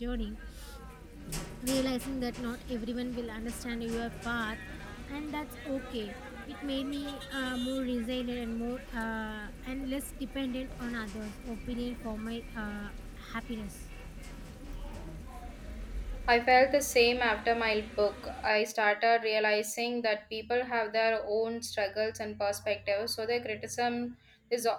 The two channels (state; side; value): identical; both; correlation 1.00